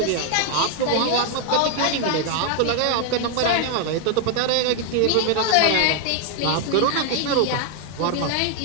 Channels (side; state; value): both; different; correlation 0.00